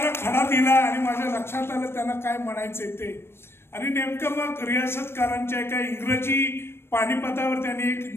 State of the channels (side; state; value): right; late; 0.12 ms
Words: खडा दिला आणि माझ्या लक्षात आलं त्यांना काय म्हणायचंय ते. आणि नेमकं मग रियासतकारांच्या एका इंग्रजी पानिपतावर त्यांनी